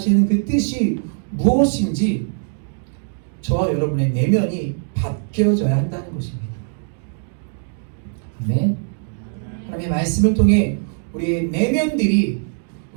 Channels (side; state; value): left; silent; digital silence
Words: 그 뜻이 무엇인지 저와 여러분의 내면이 바뀌어져야 한다는 것입니다. 아멘. 하나님의 말씀을 통해 우리의 내면들이,